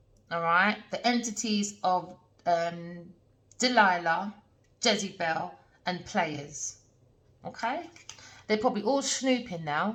all right? The entities of Delilah, Jezebel, and players, okay? They're probably all snooping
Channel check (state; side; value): identical; both; correlation 1.00